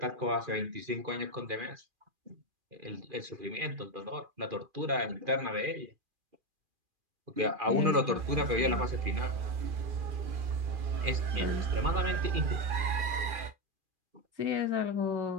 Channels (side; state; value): left; late; 2.4 ms